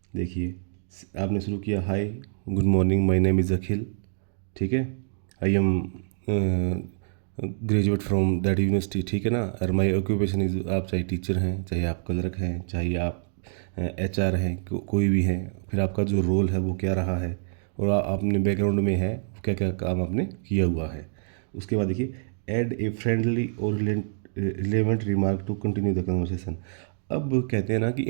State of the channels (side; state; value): left; silent; digital silence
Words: देखिए, आपने शुरू किया, hi, good morning, my name is Akhil, ठीक है, I am graduate from that university, ठीक है ना। और माय ऑक्यूपेशन इज़, आप चाहे टीचर हैं, चाहे आप क्लर्क हैं, चाहे आप एचआर हैं, कोई भी हैं, फिर आपका जो रोल है वो क्या रहा है, और आपने बैकग्राउंड में है क्या क्या काम आपने किया हुआ है। उसके बाद देखिए, ऐड ए फ्रेंडली और relevant remark to continue the conversation. अब कहते हैं ना कि